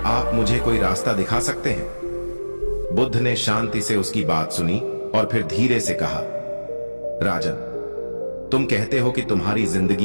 आप मुझे कोई रास्ता दिखा सकते हैं? बुद्ध ने शांति से उसकी बात सुनी और फिर धीरे से कहा, राजन, तुम कहते हो कि तुम्हारी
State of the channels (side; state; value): both; inverted; correlation -1.00